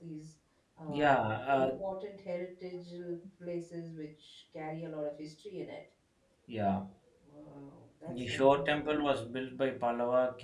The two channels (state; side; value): identical; both; correlation 1.00